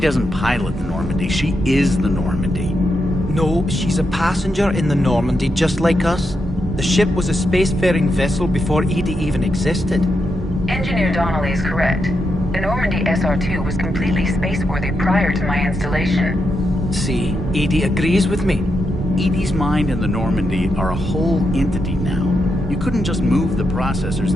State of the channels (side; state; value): both; normal; correlation 0.84